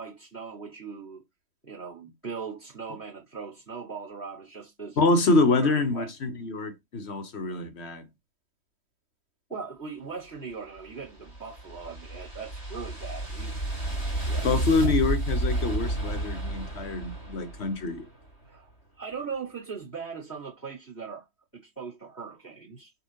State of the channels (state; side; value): late; right; 3.1 ms